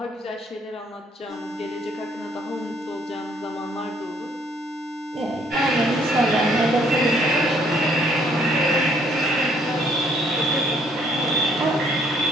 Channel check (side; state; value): both; normal; correlation 0.65